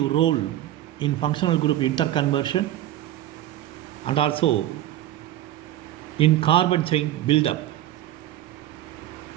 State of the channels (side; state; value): left; quieter; 13.2 dB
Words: role in functional group interconversion and also in carbon chain buildup.